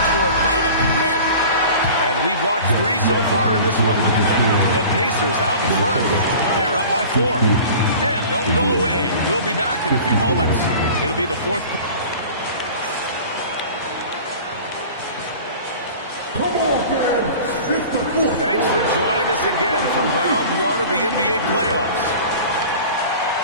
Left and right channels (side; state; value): both; inverted; correlation -0.41